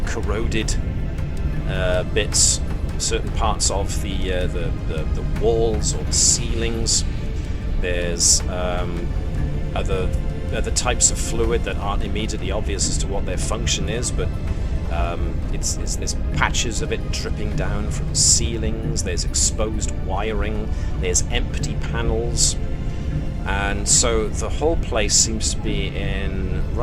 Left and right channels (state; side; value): identical; both; correlation 1.00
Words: corroded bits, certain parts of the walls or the ceilings. There's other types of fluid that aren't immediately obvious as to what their function is, but there's patches of it dripping down from ceilings. There's exposed wiring. There's empty panels, and so the whole place seems to be in